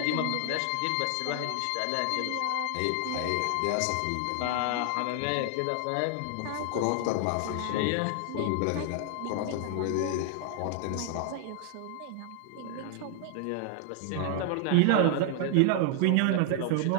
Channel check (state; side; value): different; both; correlation 0.00